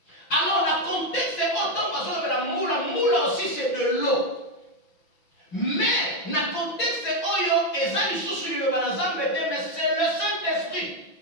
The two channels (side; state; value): right; late; 5.9 ms